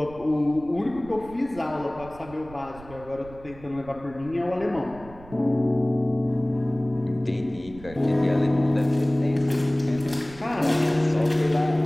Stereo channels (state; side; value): noise; right; rumble, 19 dB below the sound